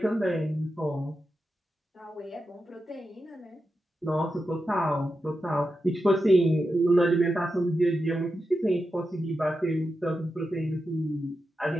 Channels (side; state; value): both; normal; correlation 0.89